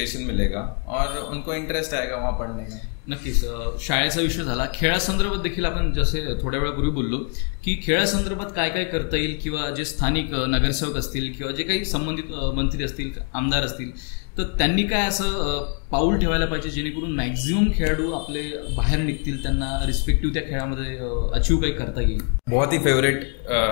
मिलेगा और उनको इंटरेस्ट आएगा वहाँ पढ़ने का. नक्कीच. शाळेचा विषय झाला. खेळासंदर्भात देखील आपण जसे थोड्या वेळापूर्वी बोललो की खेळासंदर्भात काय काय करता येईल किंवा जे स्थानिक नगरसेवक असतील किंवा जे काही संबंधित मंत्री असतील, आमदार असतील, तर त्यांनी काय असं पाऊल ठेवायला पाहिजे जेणेकरून मॅक्झिमम खेळाडू आपले बाहेर निघतील, त्यांना रिस्पेक्टिव्ह त्या खेळामध्ये अचीव काही करता येईल. बहुत ही फेवरेट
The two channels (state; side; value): quieter; right; 37.9 dB